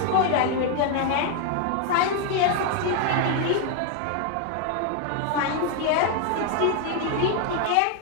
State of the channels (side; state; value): both; different; correlation 0.01